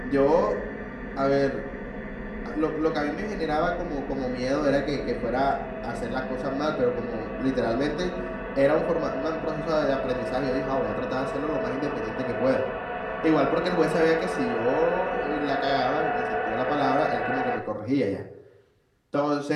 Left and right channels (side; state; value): both; identical; correlation 1.00